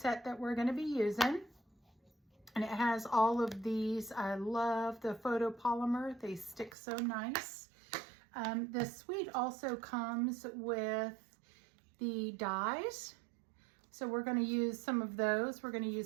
that we're going to be using. And it has all of these. I love the photopolymer. They stick so nice. The suite also comes with the dies. So we're going to use some of those. We're going to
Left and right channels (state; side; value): drops out; left; at 6.8 s